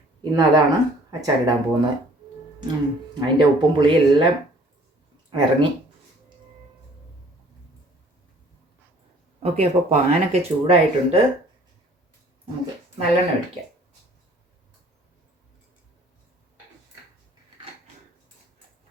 ഇന്ന് അതാണ് അച്ചാറിടാൻ പോകുന്നത്. അതിൻ്റെ ഉപ്പും പുളിയും എല്ലാം ഇറങ്ങി. ഓക്കെ, അപ്പോൾ പാനൊക്കെ ചൂടായിട്ടുണ്ട്. നമുക്ക് നല്ലെണ്ണ ഒഴിക്കാം.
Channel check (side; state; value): both; normal; correlation 0.55